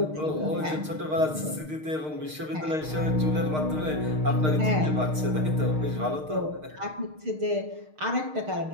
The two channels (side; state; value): left; late; 6.5 ms